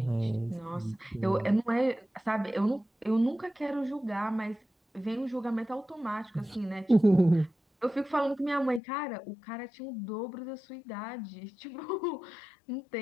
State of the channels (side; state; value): right; drops out; at 8.8 s